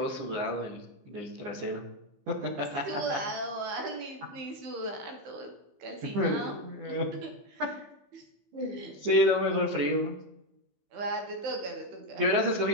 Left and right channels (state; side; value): late; left; 15 ms